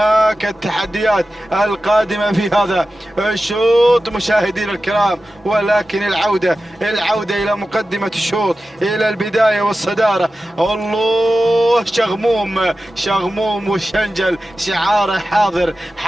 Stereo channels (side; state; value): both; normal; correlation 0.94